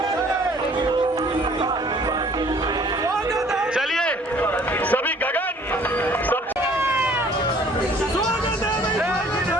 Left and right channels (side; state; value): both; normal; correlation 0.56